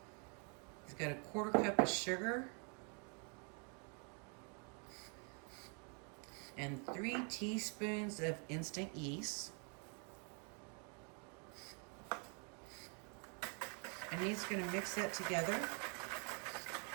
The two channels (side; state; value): left; quieter; 38.5 dB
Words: He's got a 1/4 cup of sugar and 3 teaspoons of instant yeast. And he's going to mix that together